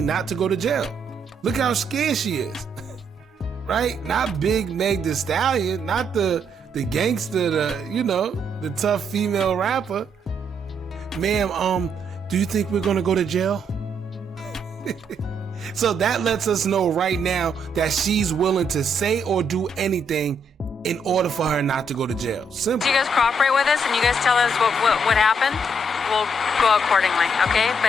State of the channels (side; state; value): both; normal; correlation 0.74